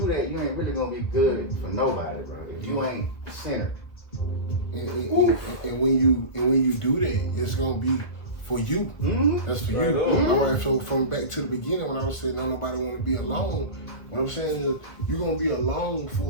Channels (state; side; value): late; right; 1.4 ms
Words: that, you ain't really gonna be good for nobody, bro. If you ain't centered. And when you do that, it's gonna be for you. Mm-hmm. That's for you. All right. So from back to the beginning, when I was saying don't nobody want to be alone, what I'm saying is you're gonna be alone